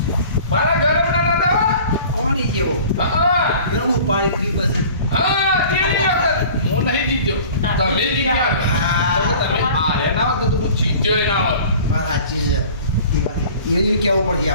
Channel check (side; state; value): both; inverted; correlation -0.45